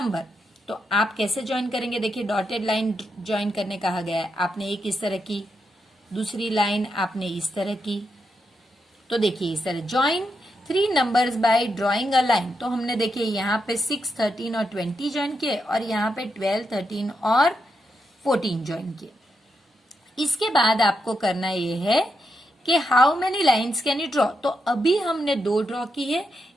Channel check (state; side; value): normal; both; correlation 0.83